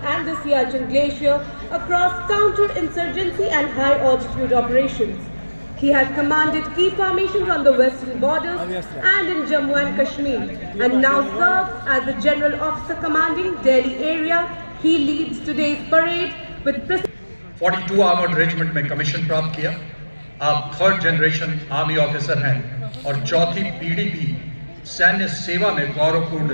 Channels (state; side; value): inverted; both; correlation -1.00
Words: and the Siachen Glacier across counter-insurgency and high-altitude operations. He has commanded key formations on the western borders and in Jammu and Kashmir, and now serves as the General Officer commanding Delhi area. He leads today's parade with 42 armoured regiment में commission प्राप्त किया। आप third generation army officer हैं और चौथी पीढ़ी भी सैन्य सेवा में